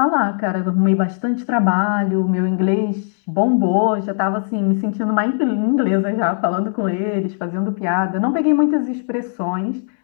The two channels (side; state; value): right; silent; digital silence